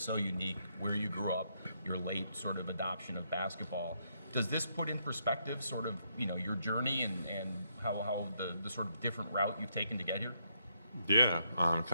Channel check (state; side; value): inverted; both; correlation -0.76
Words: unique, where you grew up, your late sort of adoption of basketball. Does this put in perspective sort of, you know, your journey and how the sort of different route you've taken to get here? Yeah,